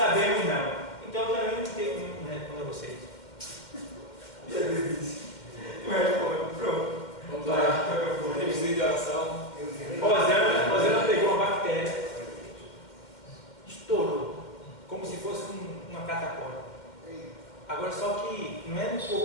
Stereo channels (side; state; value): right; late; 2.1 ms